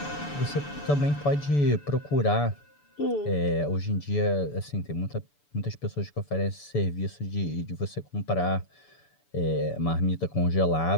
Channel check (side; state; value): right; late; 6.9 ms